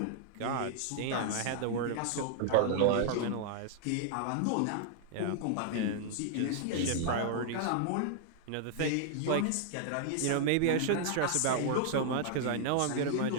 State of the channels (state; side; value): different; both; correlation -0.01